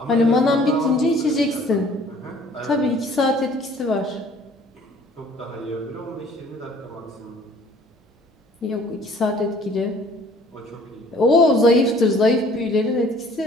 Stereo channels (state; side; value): normal; both; correlation 0.55